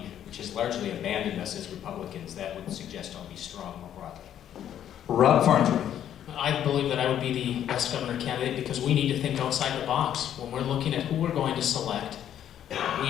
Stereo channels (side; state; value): right; quieter; 10.4 dB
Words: which has largely abandoned us as Republicans, that would suggest I'll be strong more broadly. Rob Farnsworth. I believe that I would be the best governor candidate because we need to think outside the box. When we're looking at who we're going to select,